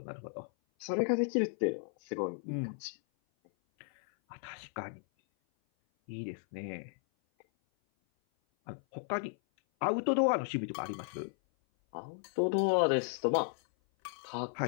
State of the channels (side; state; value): right; silent; 55 dB below the other